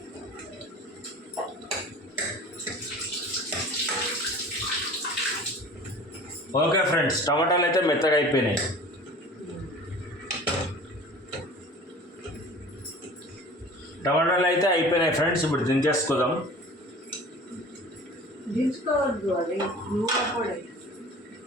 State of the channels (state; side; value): normal; both; correlation 0.42